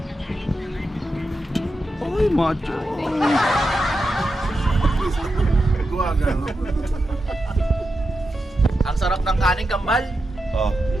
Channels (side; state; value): both; normal; correlation 0.88